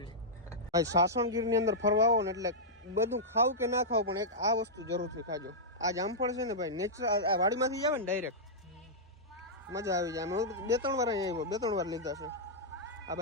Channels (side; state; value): both; normal; correlation -0.09